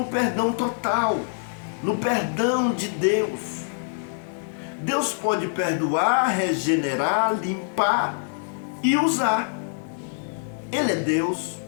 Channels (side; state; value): right; silent; 62 dB below the other